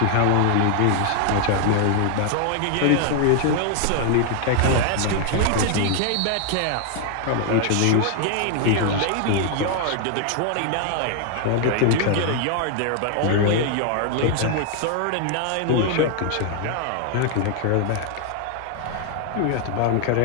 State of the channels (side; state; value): both; different; correlation 0.00